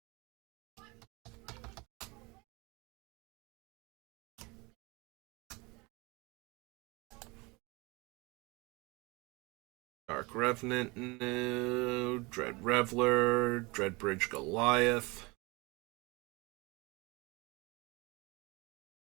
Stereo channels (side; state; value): left; quieter; 25.6 dB